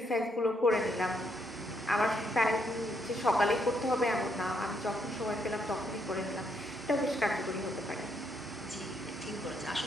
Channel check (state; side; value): normal; both; correlation 0.75